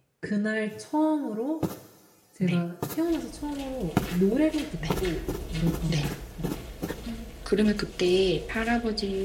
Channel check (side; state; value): both; identical; correlation 1.00